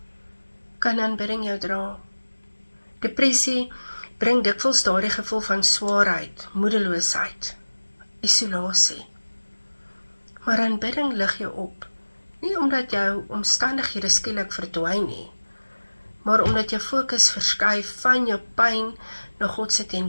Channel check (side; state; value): both; inverted; correlation -1.00